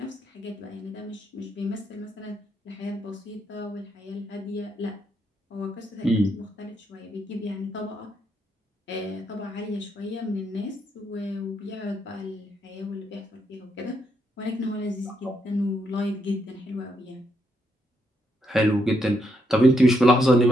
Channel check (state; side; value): normal; both; correlation 0.77